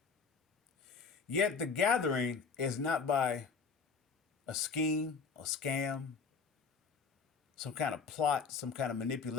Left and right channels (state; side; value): quieter; right; 5.2 dB